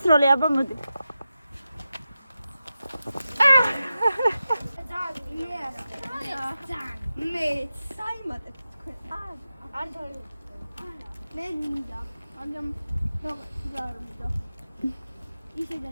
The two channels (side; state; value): both; inverted; correlation -0.92